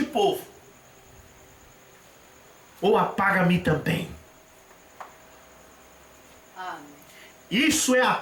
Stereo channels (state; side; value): identical; both; correlation 1.00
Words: povo, ou apaga-me também. Amém. Isso é a